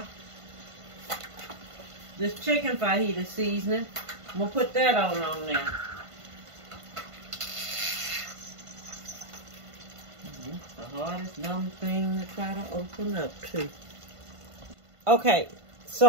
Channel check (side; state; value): left; late; 1.5 ms